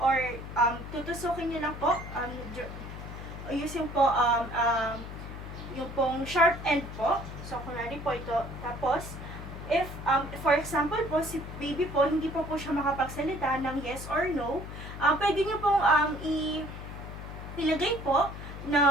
tutusukin niyo lang po. Using po yung pong sharp end po. So, kunwari po ito. Tapos, if, for example po, si baby po, hindi po siya makapagsalita ng yes or no, pwede niyo pong ilagay po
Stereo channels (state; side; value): noise; left; hum, 10 dB below the sound